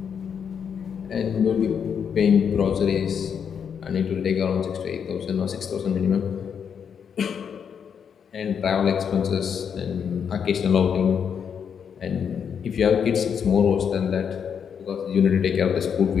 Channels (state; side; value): quieter; right; 7.3 dB